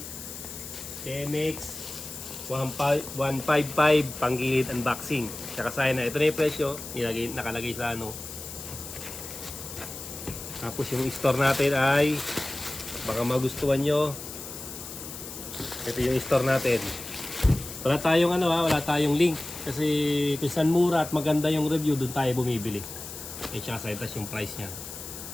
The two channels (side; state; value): left; noise; hiss, 11 dB below the sound